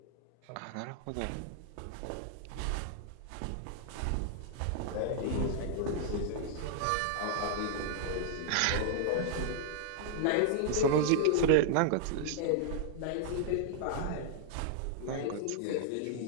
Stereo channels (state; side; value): different; both; correlation -0.01